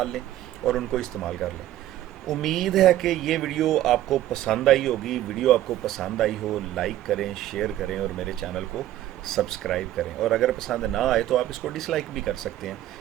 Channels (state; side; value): quieter; left; 13.6 dB